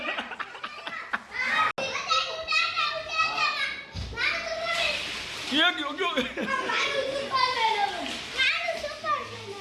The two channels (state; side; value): identical; both; correlation 1.00